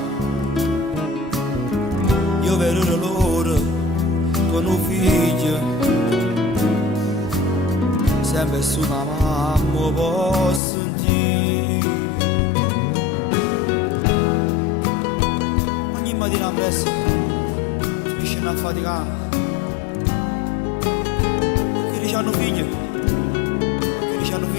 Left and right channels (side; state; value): right; drops out; at 10.6 s